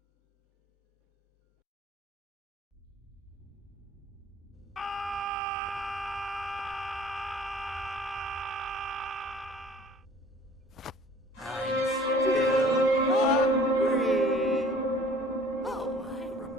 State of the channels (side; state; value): both; normal; correlation 0.50